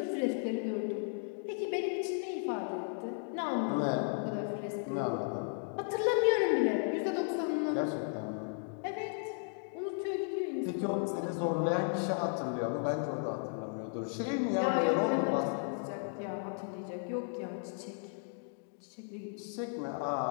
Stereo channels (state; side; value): silent; right; 54 dB below the other